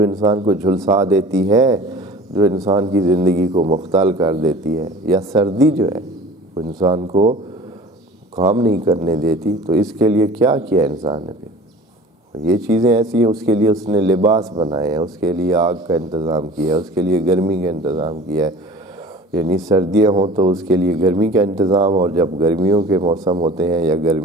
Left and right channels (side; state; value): both; normal; correlation 0.42